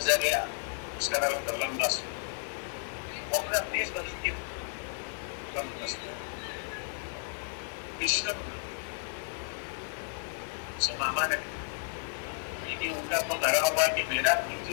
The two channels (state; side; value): silent; right; digital silence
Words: उसका नाम लंबा अपना देश बदलती कृष्ण मामा ने लेकिन उनका तो लगा हुआ कि मेरा